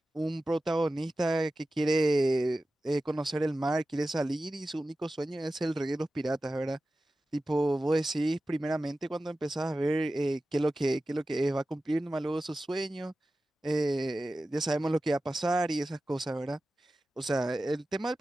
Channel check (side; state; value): both; normal; correlation 0.95